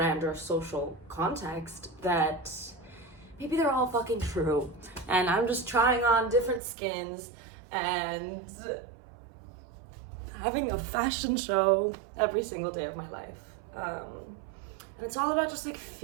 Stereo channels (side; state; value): left; drops out; at 6.6 s